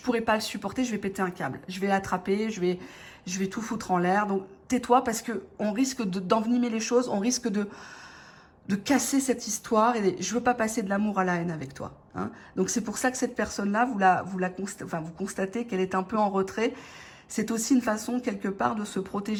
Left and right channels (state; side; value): identical; both; correlation 1.00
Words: pas le supporter, je vais péter un câble. Je vais l'attraper, je vais tout foutre en l'air. Donc, tais-toi parce que on risque d'envenimer les choses, on risque de casser cette histoire et je veux pas passer de l'amour à la haine avec toi. Hein. Donc, c'est pour ça que cette personne-là, vous constatez qu'elle est un peu en retrait. C'est aussi une façon, quelque part, de se